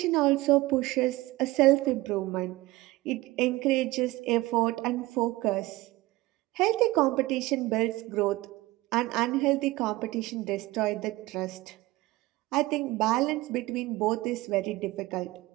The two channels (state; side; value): quieter; left; 19.5 dB